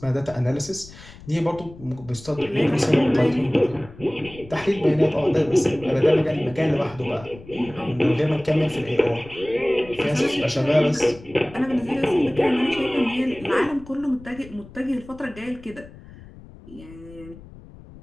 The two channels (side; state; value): left; noise; rumble, 19 dB below the sound